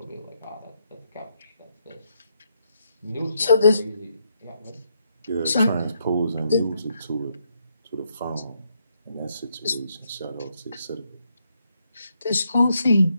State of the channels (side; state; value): both; inverted; correlation -0.77